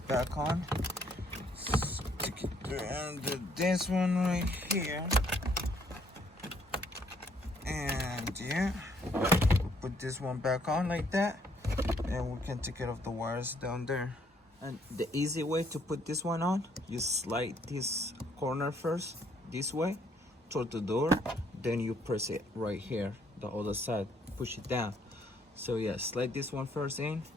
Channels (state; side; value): normal; both; correlation 0.67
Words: on. Stick it through under this one right here. And yeah, put this one back on like that. And we can take care of the wires down there. And the easy way to put this one on, you slide this corner first, this way, toward the door. Then you press it right here, the other side, push it down. So yeah, slide this one first in